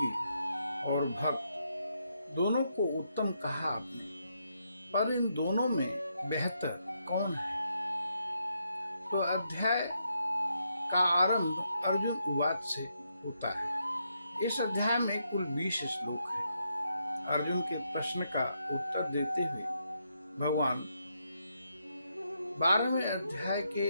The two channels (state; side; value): inverted; both; correlation -0.79